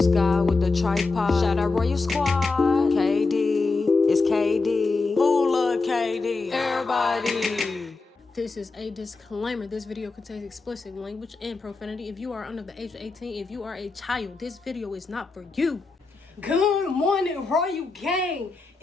Sky with the tripod. Shout out Royal Squad. KD, it's KD. Who love KD? Everybody. This is a disclaimer. This video contains explicit language and profanity. If you are under the age of 18, if you are a child, this video is not for you. Good morning, Royal Gang.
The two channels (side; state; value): right; quieter; 3.9 dB